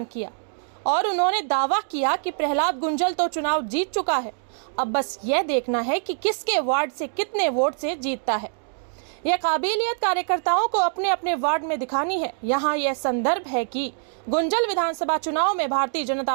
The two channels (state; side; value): silent; left; digital silence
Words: किया और उन्होंने दावा किया कि प्रहलाद गुंजल तो चुनाव जीत चुका है, अब बस यह देखना है कि किसके वार्ड से कितने वोट से जीतता है। यह काबिलियत कार्यकर्ताओं को अपने अपने वार्ड में दिखानी है। यहाँ यह संदर्भ है कि गुंजल विधानसभा चुनाव में भारतीय